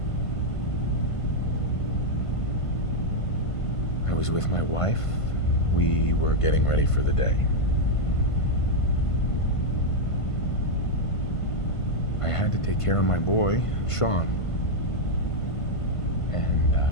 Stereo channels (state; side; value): late; right; 1.5 ms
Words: I was with my wife. We were getting ready for the day. I had to take care of my boy, Sean. And,